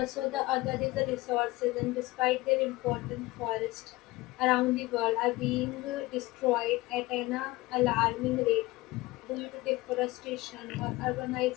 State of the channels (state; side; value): quieter; right; 20.2 dB